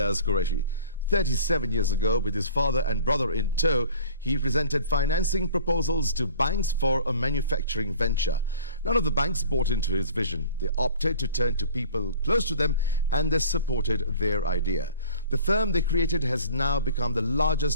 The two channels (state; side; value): inverted; both; correlation -0.47